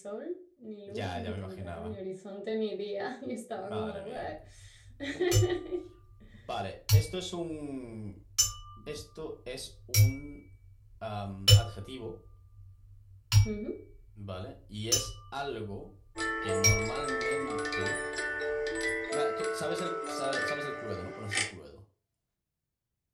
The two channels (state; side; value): identical; both; correlation 1.00